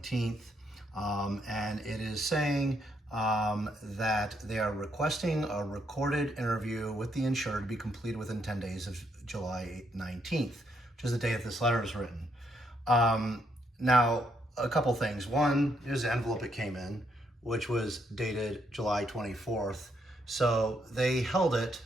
and it is saying that they are requesting a recorded interview with the insured to be completed within 10 days of July 19th, which is the day that this letter is written. Now, a couple things. One, here's the envelope it came in, which was dated July 24th. So they held it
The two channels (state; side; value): normal; both; correlation 0.75